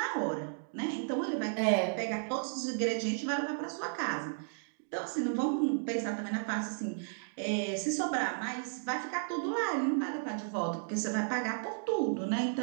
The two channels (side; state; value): left; silent; digital silence